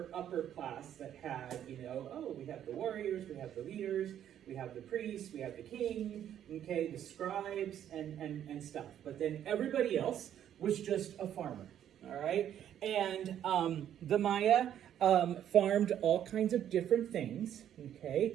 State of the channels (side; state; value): left; quieter; 10.4 dB